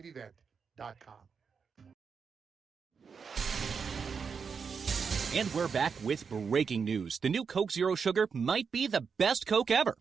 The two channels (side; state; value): left; quieter; 5.9 dB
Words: And we're back with breaking news. The new Coke Zero Sugar might be the best Coke ever.